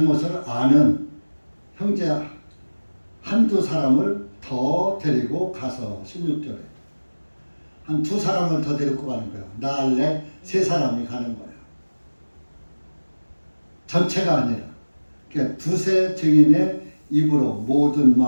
아는 형제 한두 사람을 더 데리고 가서 16절에 한 두 사람을 더 데리고 가는 거야. 나 할래 3사람이 가는 거야. 전체가 아니라 그러니까 두세 증인의 입으로 모든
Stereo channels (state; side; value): inverted; both; correlation -1.00